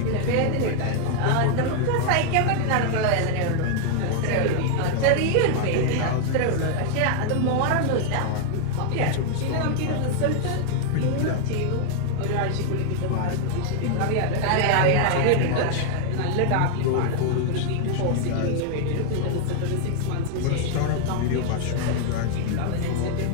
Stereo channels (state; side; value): different; both; correlation 0.00